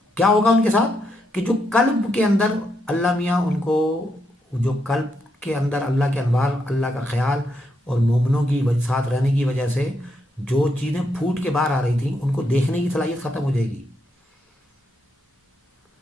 کیا ہوگا ان کے ساتھ، کہ جو قلب کے اندر اللہ میاں ان کو، جو قلب کے اندر اللہ کے انوار، اللہ کا خیال اور مومنوں کی ساتھ رہنے کی وجہ سے جو چیزیں پھوٹ کے باہر آ رہی تھیں ان کو دیکھنے کی صلاحیت ختم ہو جائے گی.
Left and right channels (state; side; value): normal; both; correlation 0.79